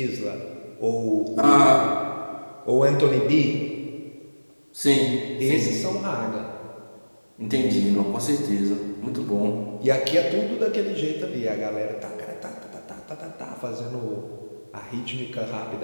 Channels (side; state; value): both; inverted; correlation -1.00